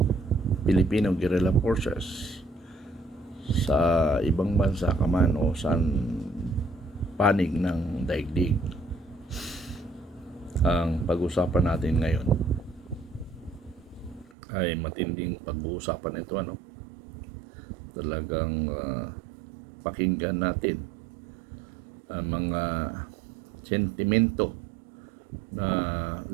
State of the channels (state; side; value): drops out; left; at 14.3 s